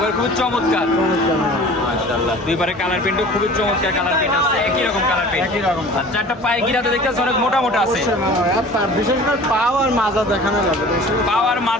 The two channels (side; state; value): both; normal; correlation 0.43